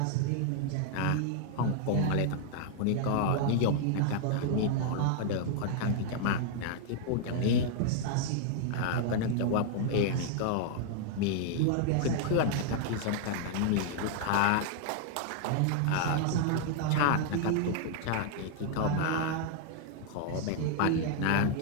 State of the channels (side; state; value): both; different; correlation 0.00